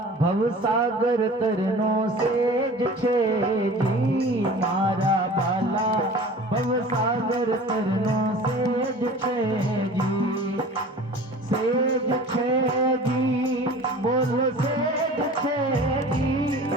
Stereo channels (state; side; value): normal; both; correlation 0.41